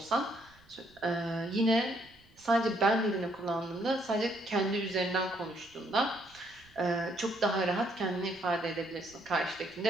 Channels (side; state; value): right; noise; rumble, 28 dB below the sound